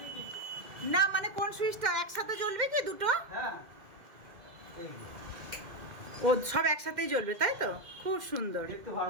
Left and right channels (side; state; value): left; late; 2.1 ms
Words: না, মানে কোন সুইচটা একসাথে জ্বলবে কি দুটো? ও সব একসাথেই জ্বলবে, তাই তো? খুব সুন্দর,